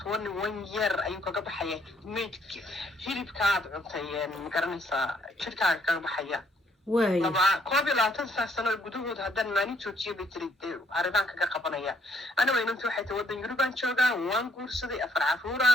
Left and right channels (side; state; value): both; normal; correlation 0.68